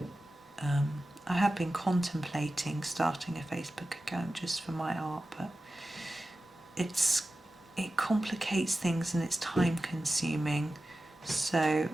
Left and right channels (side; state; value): both; normal; correlation 0.94